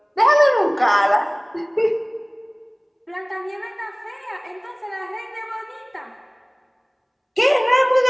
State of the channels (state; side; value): identical; both; correlation 1.00